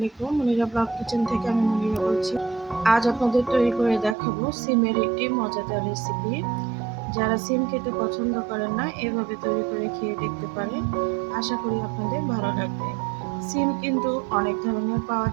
Monira blog kitchen থেকে আমি মনিরা বলছি। আজ আপনাদের তৈরি করে দেখাবো সিমের একটি মজাদার রেসিপি। যারা সিম খেতে পছন্দ করেন না, এভাবে তৈরি করে খেয়ে দেখতে পারেন। আশা করি আপনাদের ভালো লাগবে। সিম কিন্তু অনেক ধরনের পাওয়া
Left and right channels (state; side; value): drops out; left; at 4.2 s